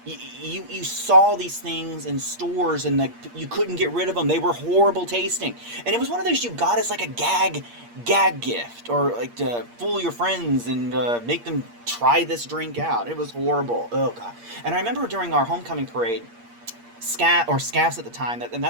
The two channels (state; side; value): late; left; 8.6 ms